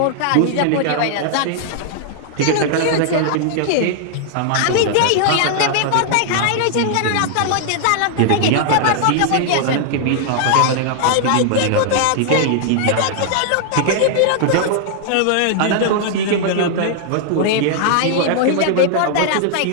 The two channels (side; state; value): both; different; correlation -0.01